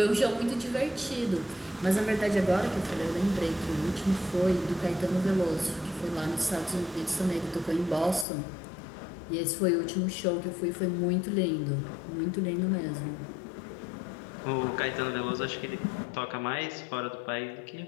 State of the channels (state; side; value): drops out; right; at 8.2 s